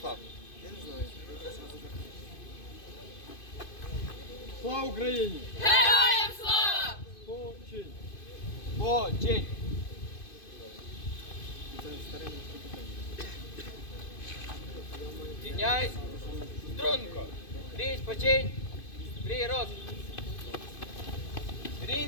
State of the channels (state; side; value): late; right; 2.5 ms